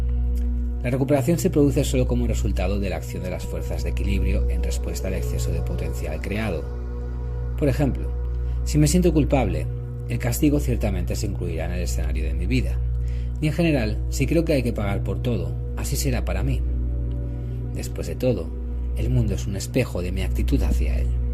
La recuperación se produce solo como resultado de la acción de las fuerzas de equilibrio en respuesta al exceso de potencial creado. Por ejemplo, si me siento culpable, el castigo ciertamente se incluirá en el escenario de mi vida. Y en general, si creo que hay que pagar por todo, así será para mí. Después de todo, el mundo es un espejo de mi actitud hacia él.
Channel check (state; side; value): identical; both; correlation 1.00